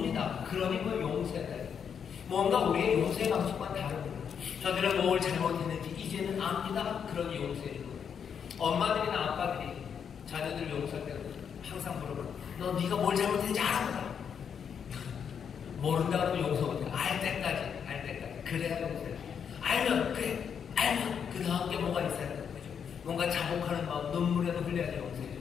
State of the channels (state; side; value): quieter; right; 7.4 dB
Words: 그러니 뭐 용서해야 돼요. 뭔가 우리의 용서의 방식과는 다릅니다. 저들은 뭘 잘못했는지 이제는 압니다. 그러니 용서해 주는 거예요. 엄마들이나 아빠들이 자녀들 용서할 때 항상 물어봐요. 너 네가 뭘 잘못했는지 알아? 모른다 그러면 용서 못해. 알 때까지. 그래야 용서해. 알면 그 다음 게 뭐가 있어야 돼요. 뭔가 자복하는 마음, 눈물에도 흘려야지 용서해줘.